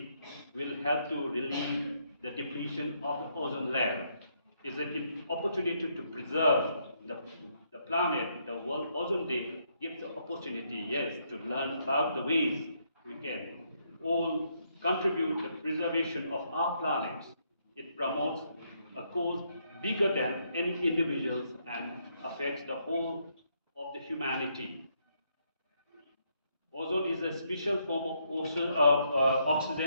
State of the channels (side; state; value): both; inverted; correlation -0.75